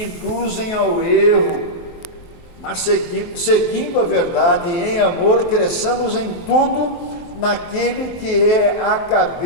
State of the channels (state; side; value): late; right; 23 ms